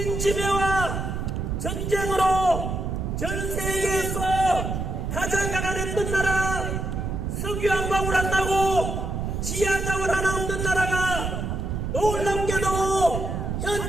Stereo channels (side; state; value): right; noise; rumble, 3 dB below the sound